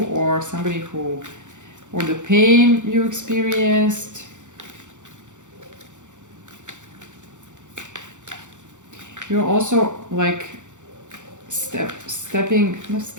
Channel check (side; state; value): left; late; 0.85 ms